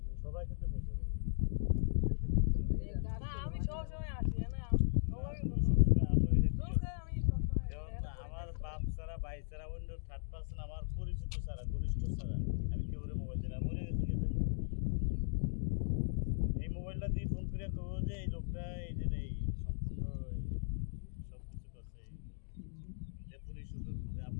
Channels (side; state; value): right; silent; digital silence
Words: সবাই কিন্তু পেয়ে যাবে না আমি সব সময় আসি না সবাই সবসময় আসোই না আমি সব সময় যেমন আমার বাপ ছাড়া ভাই ছাড়া অন্য থার্ড পার্সন আমার পরিচিত ছাড়া ঘনিষ্ঠ ছাড়া আমি কেউ মোবাইল দিই না মরে গেছি এই মোবাইলটা দিয়ে ফোন করে কব যে এই লোকটা এই যে এই সম্পূর্ণ সব কিছু করছে যে পুলিশ সুযোগ যে